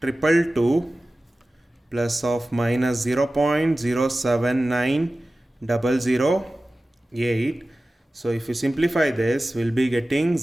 plus of minus 0.079008. So if you simplify this, we'll be getting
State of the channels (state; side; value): normal; both; correlation 0.96